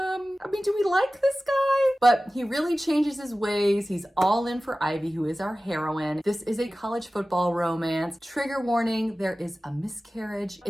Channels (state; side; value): normal; both; correlation 0.96